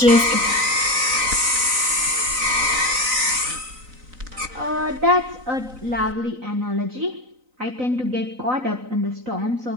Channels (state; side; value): late; left; 3.9 ms